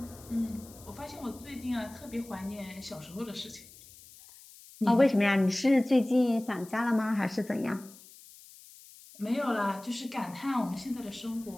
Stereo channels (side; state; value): left; noise; hiss, 21 dB below the sound